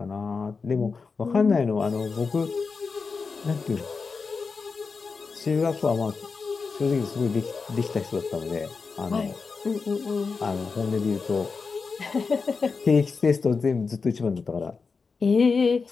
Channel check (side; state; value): right; quieter; 4.8 dB